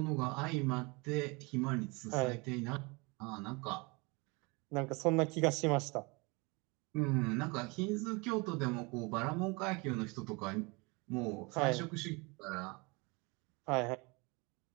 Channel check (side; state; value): left; quieter; 27.8 dB